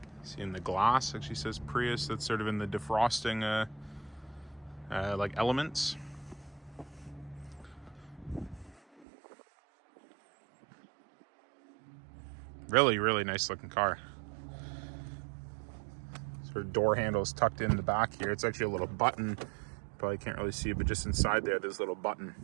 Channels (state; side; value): drops out; left; at 9.1 s